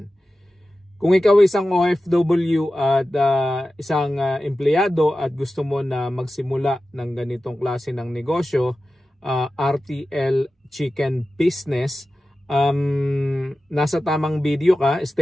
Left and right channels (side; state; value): both; normal; correlation 0.94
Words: Kung ikaw ay isang OFW at isang empleyado at gusto mo na magsimula ng ganitong klase ng negosyo, RTL Chicken Business, nasa tamang video ka,